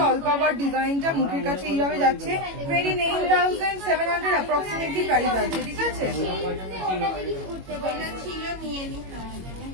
অল কভার ডিজাইনটা। মুখের কাছে এইভাবে যাচ্ছে। 29,700 অ্যাপ্রক্সিমেটলি প্রাইস আছে, ঠিক আছে।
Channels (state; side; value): late; left; 21 ms